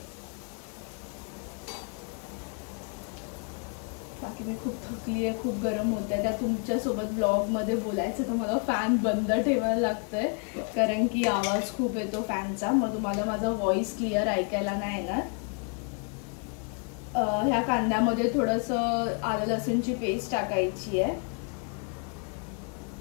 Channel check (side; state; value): right; quieter; 38.8 dB